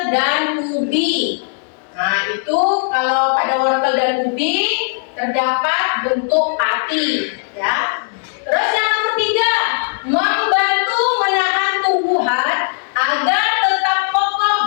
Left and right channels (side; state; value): right; silent; 68 dB below the other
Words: dan ubi. Nah, itu kalau pada wortel dan ubi terdapat bentuk pati ya. Terus yang nomor 3, membantu menahan tumbuhan agar tetap